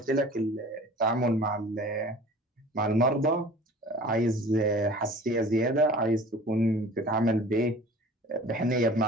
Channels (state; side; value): normal; both; correlation 0.43